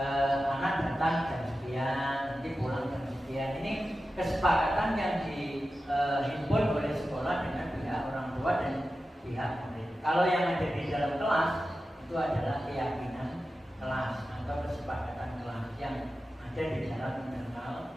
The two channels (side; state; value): both; normal; correlation 0.93